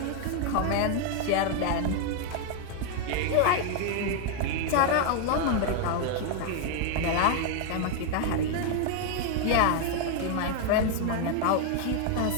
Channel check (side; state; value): both; different; correlation 0.00